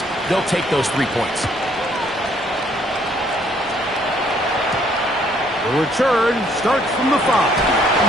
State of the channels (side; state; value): both; normal; correlation 0.65